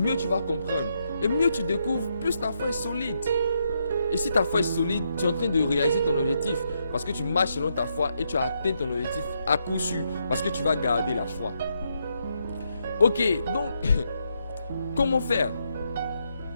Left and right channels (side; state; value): both; inverted; correlation -0.79